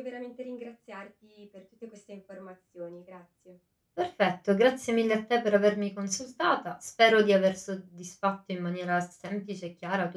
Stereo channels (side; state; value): both; identical; correlation 1.00